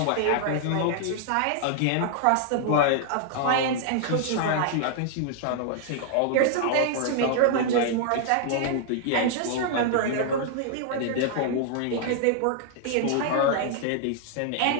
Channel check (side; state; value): both; different; correlation -0.01